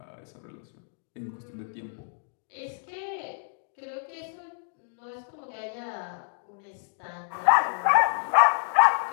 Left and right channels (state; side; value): silent; right; digital silence